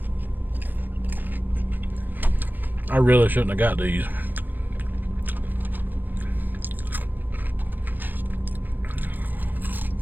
I really shouldn't have got these.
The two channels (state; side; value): late; left; 0.091 ms